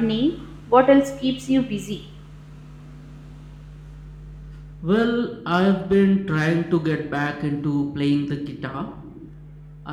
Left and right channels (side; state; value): both; identical; correlation 1.00